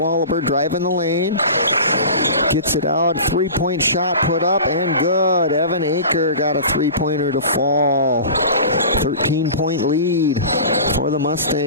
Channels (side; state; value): both; inverted; correlation -0.36